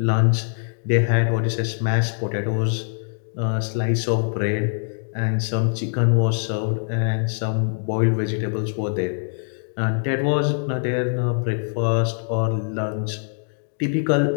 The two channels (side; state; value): right; silent; digital silence